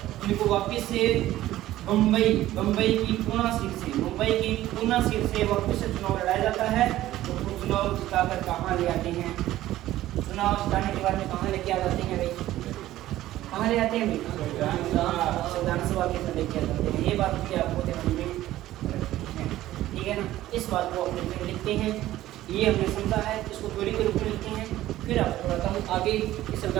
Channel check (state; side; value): quieter; left; 14.8 dB